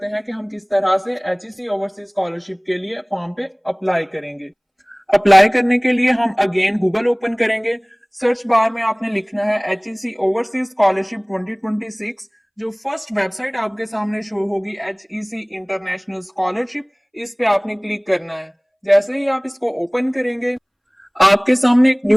हैं कि हम किस तरह से एचईसी ओवरसीज स्कॉलरशिप के लिए फॉर्म पे अप्लाई करेंगे। अप्लाई करने के लिए हम अगेन गूगल ओपन करेंगे। सर्च बार में आपने लिखना है एचईसी ओवरसीज स्कॉलरशिप 2026। जो फर्स्ट वेबसाइट आपके सामने शो होगी एचईसी इंटरनेशनल स्कॉलरशिप, इस पे आपने क्लिक करना है। जैसे ही आप इसको ओपन करेंगे आपके सामने एक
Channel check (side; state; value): both; identical; correlation 1.00